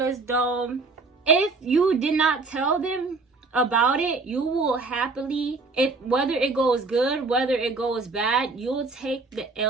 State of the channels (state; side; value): quieter; left; 3.8 dB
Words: as though if you did not tell them about it, you will happily, whether it goes good, whether it goes bad, you'll take the